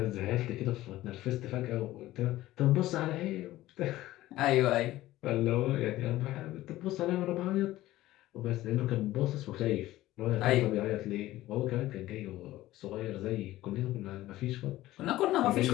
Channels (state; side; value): quieter; right; 15.9 dB